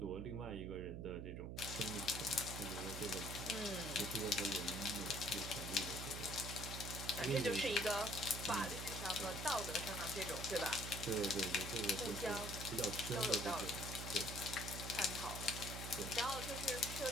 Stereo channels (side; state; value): right; noise; hum, 6 dB below the sound